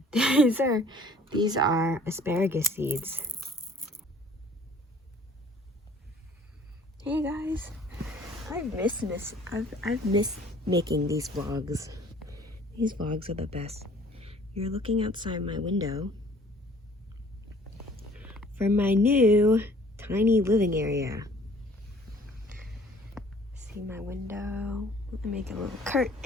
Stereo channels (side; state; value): both; normal; correlation 0.54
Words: These are asparagus seeds. Hey guys, I've missed making these vlogs. These vlogs are the best. You're looking outside my window from my new tiny living area. See my window? Let me make a little